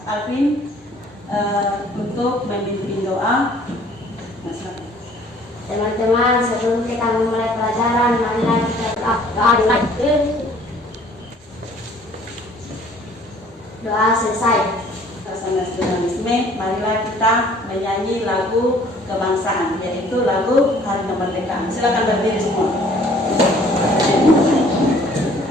Alvin untuk memimpin doa. Nah, silakan. Teman-teman, sebelum kita memulai pelajaran, marilah kita berdoa. Doa selesai. Nasionalisme, marilah kita menyanyi lagu kebangsaan, yaitu lagu Hari Kemerdekaan. Silakan berdiri semua.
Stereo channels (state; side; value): normal; both; correlation 0.56